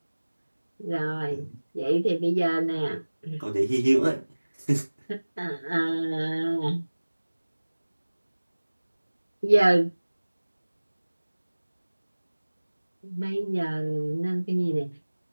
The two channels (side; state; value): both; inverted; correlation -1.00